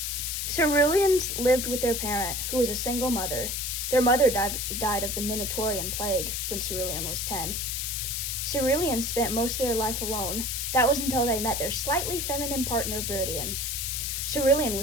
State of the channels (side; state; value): left; noise; hiss, 2 dB below the sound